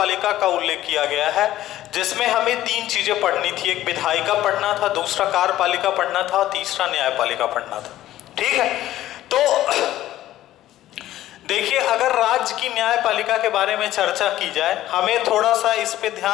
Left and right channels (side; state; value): right; quieter; 14.0 dB